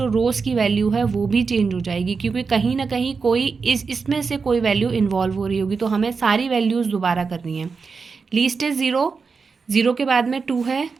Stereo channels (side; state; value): left; quieter; 5.0 dB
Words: रोज़ की वैल्यू है वो भी चेंज हो जाएगी, क्योंकि कहीं ना कहीं कोई इसमें से कोई वैल्यू इन्वॉल्व हो रही होगी, तो हमें सारी वैल्यूज़ दोबारा करनी है। लीस्ट इज़ 0, 0 के बाद में 2 है,